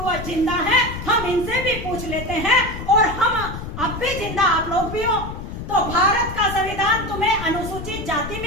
जिंदा हैं, हम इनसे भी पूछ लेते हैं और हम अब भी जिंदा आप लोग भी हो। तो भारत का संविधान तुम्हें अनुसूचित जाति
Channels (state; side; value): noise; left; rumble, 8 dB below the sound